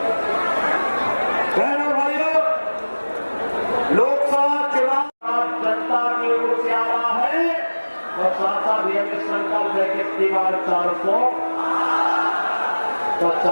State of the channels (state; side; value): inverted; both; correlation -1.00